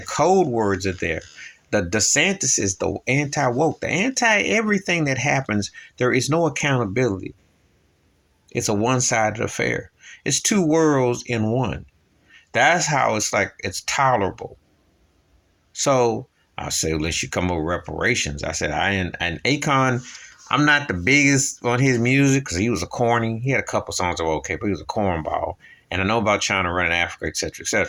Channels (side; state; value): both; identical; correlation 1.00